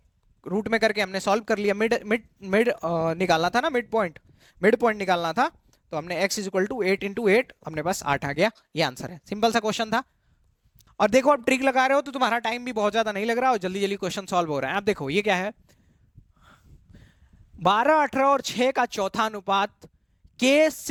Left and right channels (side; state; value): both; identical; correlation 1.00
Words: रूट में करके हमने सॉल्व कर लिया, मिड मिड मिड निकालना था ना, मिड पॉइंट निकालना था, तो हमने x = 8 × 8, अपने पास 8 आ गया। ये आंसर है, सिंपल सा क्वेश्चन था। और देखो अब ट्रिक लगा रहे हो तो तुम्हारा टाइम भी बहुत ज्यादा नहीं लग रहा और जल्दी जल्दी क्वेश्चन सॉल्व हो रहा है। अब देखो ये क्या है, 12 18 और 6 का चौथा अनुपात के